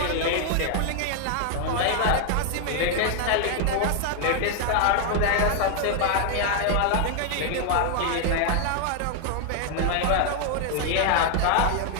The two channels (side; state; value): both; different; correlation 0.00